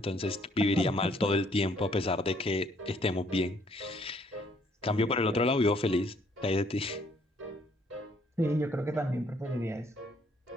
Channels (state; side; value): normal; both; correlation 0.65